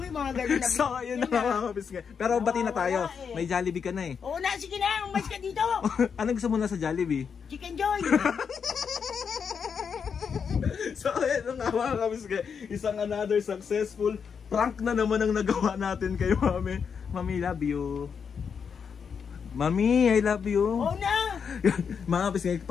yung mga ganun na So, yun na mga kapisngi. Pero bati na tayo. May Jollibee ka na Oo na, sige na. Umalis ka dito. Ano gusto mo na sa Jollibee? Chicken Joy. So, yun na nga mga kapisngi. Isang another successful Prank na naman ang nagawa natin kay Mami. Mami, love you. Mami, I love you. Oo na! Mga kapis,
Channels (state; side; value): quieter; right; 6.5 dB